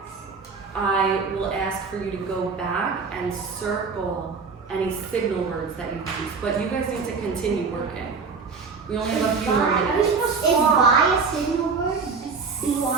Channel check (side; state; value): left; quieter; 5.0 dB